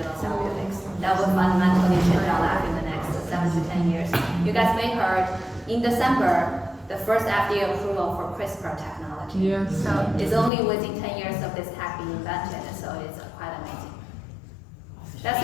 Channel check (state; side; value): drops out; right; at 10.5 s